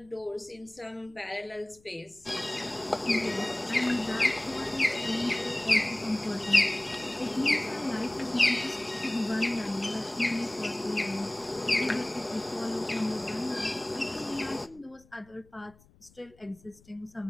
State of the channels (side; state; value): left; noise; rumble, 28 dB below the sound